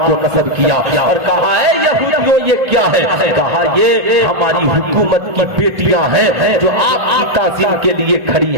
نصب کیا اور کہا اے یہودیوں یہ کیا ہے؟ کہا یہ ہماری حکومت کی بیٹیاں ہیں جو آپ کی تعظیم کے لیے کھڑی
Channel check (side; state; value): left; late; 1.8 ms